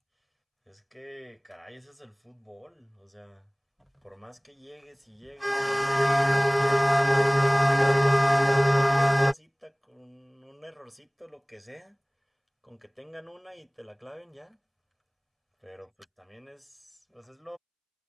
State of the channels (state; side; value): identical; both; correlation 1.00